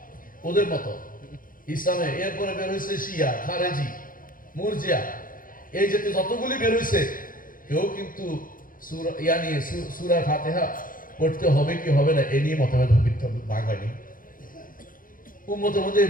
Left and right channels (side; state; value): right; late; 0.40 ms